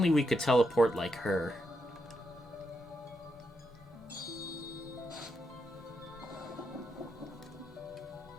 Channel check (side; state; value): both; normal; correlation 0.82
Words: we could teleport like her.